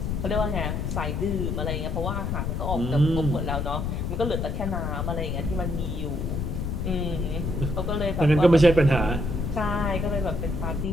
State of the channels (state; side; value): noise; left; rumble, 2 dB below the sound